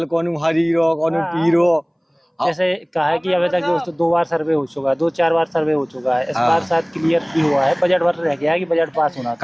कौन हरीरो, कौन पीरो। जैसे कहा है कि अभी तक दोस्तों 2 बार सर्वे हो चुका है, 2-4 बार सर्वे हो चुका है। इस बार शायद क्लियर भी हुआ है, बजट पर रह गया है कि बजट पास होना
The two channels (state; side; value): identical; both; correlation 1.00